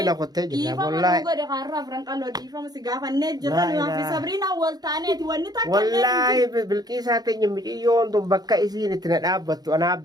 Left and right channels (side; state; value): left; late; 0.19 ms